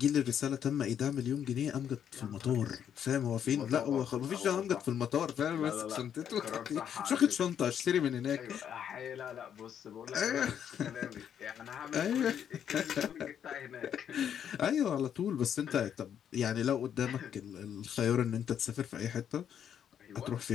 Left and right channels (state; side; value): quieter; right; 9.0 dB